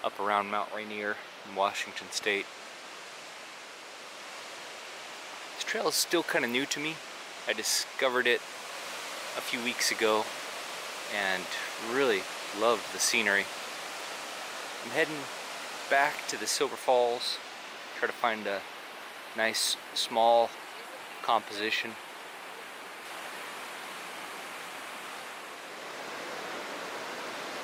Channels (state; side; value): identical; both; correlation 1.00